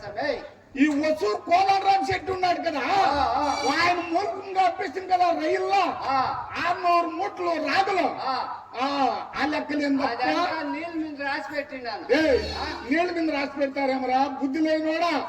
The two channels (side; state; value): both; identical; correlation 1.00